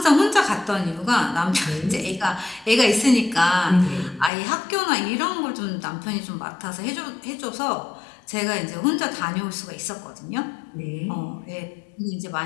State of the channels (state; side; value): drops out; right; at 4.3 s